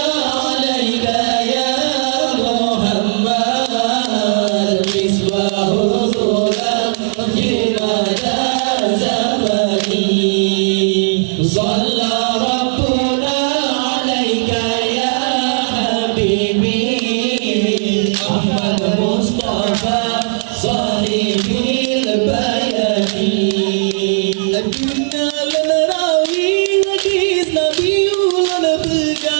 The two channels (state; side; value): silent; left; 67 dB below the other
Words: alayka ya Muhammad, misbahu zulam fi mada zamani. Shalla rabbuna alayka ya habibi, Ahmad Mustafa sahibil bayani. Aduna lenerawi hadis Nabi ulang